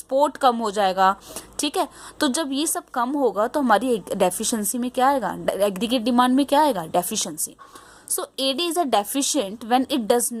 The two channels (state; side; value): identical; both; correlation 1.00